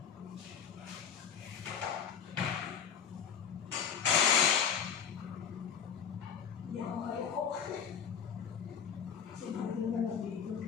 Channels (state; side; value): quieter; right; 7.4 dB